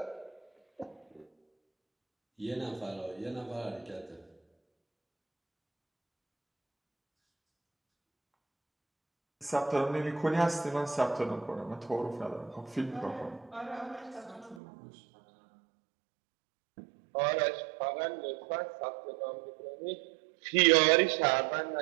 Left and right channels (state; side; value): drops out; left; at 14.6 s